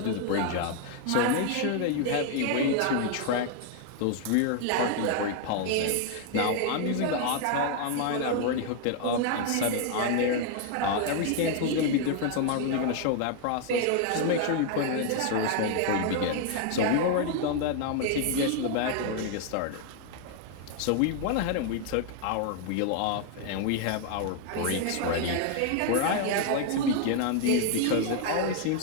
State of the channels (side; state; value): both; different; correlation 0.00